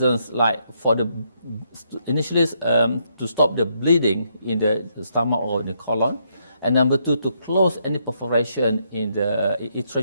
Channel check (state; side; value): inverted; both; correlation -0.75